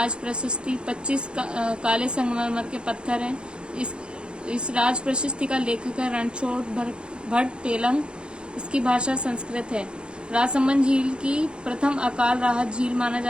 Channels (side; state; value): left; late; 0.053 ms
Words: प्रशस्ति, 25 काले संगमरमर के पत्थर हैं। इस राज प्रशस्ति का लेखक है रणछोड़ भट्ट तेलंग। इसकी भाषा संस्कृत है। राजसमंद झील की प्रथम अकाल राहत झील माना